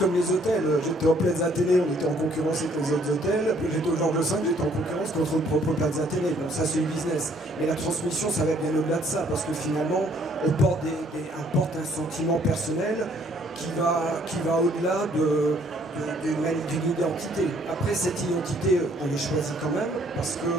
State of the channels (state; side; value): normal; both; correlation 0.63